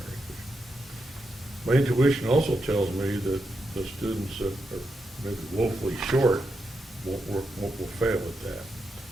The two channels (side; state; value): both; normal; correlation 0.85